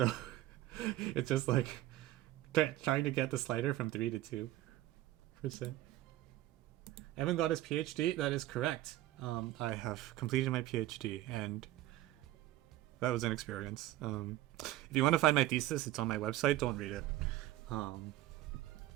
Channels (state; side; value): quieter; left; 15.1 dB